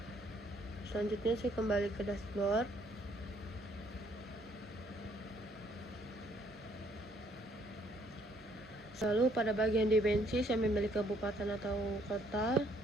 Selanjutnya saya kembali ke dashboard. Lalu pada bagian dimensi saya memilih kabupaten atau kota.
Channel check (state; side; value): normal; both; correlation 0.66